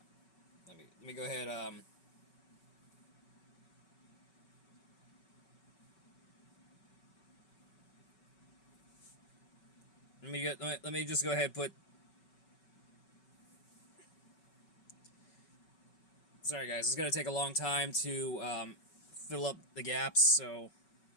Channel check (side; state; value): right; late; 5.3 ms